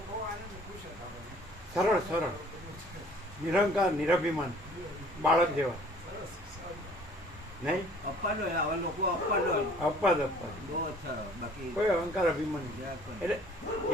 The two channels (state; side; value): normal; both; correlation 0.53